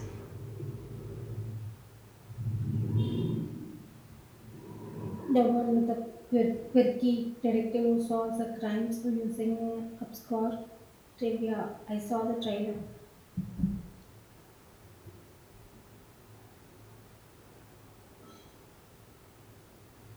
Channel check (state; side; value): identical; both; correlation 1.00